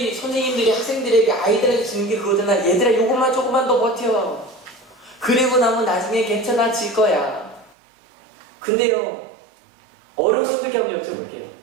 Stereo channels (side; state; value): left; drops out; at 7.8 s